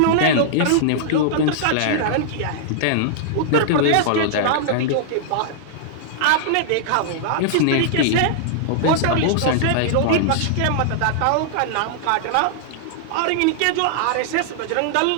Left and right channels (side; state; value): both; different; correlation -0.01